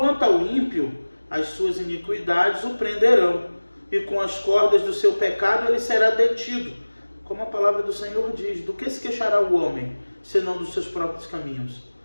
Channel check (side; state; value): both; inverted; correlation -1.00